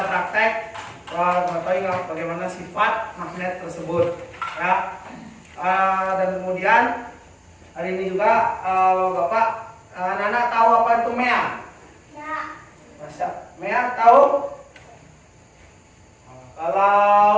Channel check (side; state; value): both; identical; correlation 1.00